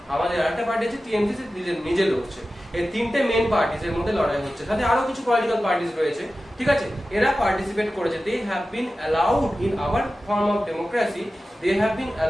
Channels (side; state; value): both; normal; correlation 0.94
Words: আমাদের আরেকটা পার্টি আছে টিএমসি, সে নিজে লড়ছে। এই তিনটে মেইন পার্টিস এর মধ্যে লড়াই হচ্ছে, সাথে আরো কিছু পলিটিক্যাল পার্টিস রয়েছে, ঠিক আছে? এরা পার্টিসিপেট করেছে। They have been allowed in our form of democracy, they have been